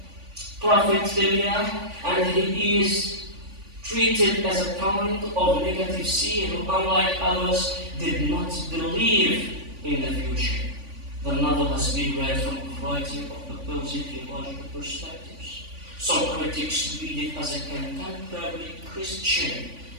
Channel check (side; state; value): left; late; 3.5 ms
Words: prophet Elijah, and he is treated as a kind of negative seer who, unlike others, did not believe in the future. The novel has been read from a variety of opposing theological perspectives. Some critics read it as a contemporary Christian